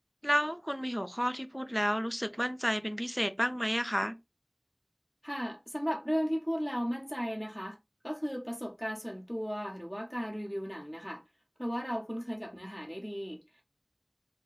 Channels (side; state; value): both; identical; correlation 1.00